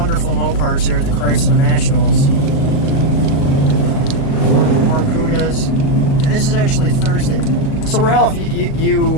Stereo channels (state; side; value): late; right; 38 ms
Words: Mopars here at the Chrysler Nationals. More Cudas. And this is actually Thursday. So Ralph,